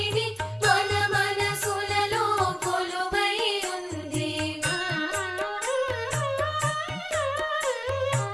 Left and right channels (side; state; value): both; identical; correlation 1.00